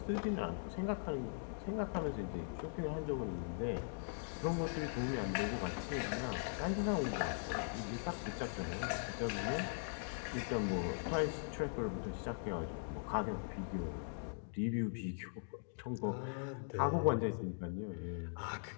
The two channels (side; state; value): right; silent; digital silence